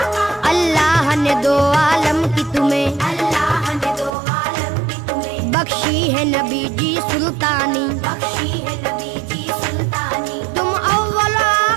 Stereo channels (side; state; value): left; drops out; at 4.1 s